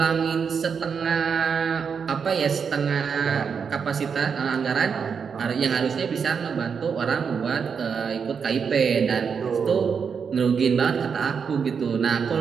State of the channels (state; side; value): quieter; left; 6.3 dB